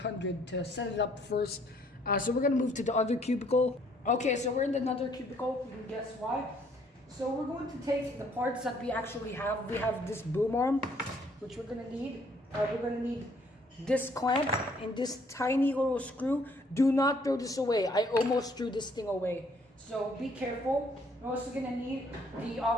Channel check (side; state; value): both; normal; correlation 0.64